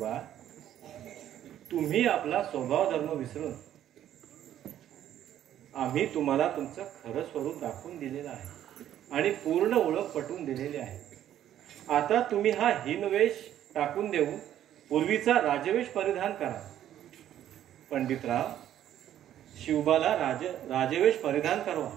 तुम्ही आपला स्वभाव धर्म विसरून आम्ही तुम्हाला तुमचं खरं स्वरूप दाखवून दिलेलं आहे आणि पूर्ण ओळख पटवून दिलेली आहे. आता तुम्ही हा हीनवेश टाकून देऊन पूर्वीचा राजवेश परिधान करा. पंडितराव, शिवबाला राजवेश परिधान करवा.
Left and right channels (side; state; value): left; quieter; 11.4 dB